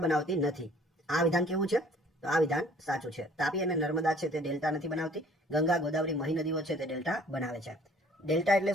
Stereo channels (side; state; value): both; normal; correlation 0.55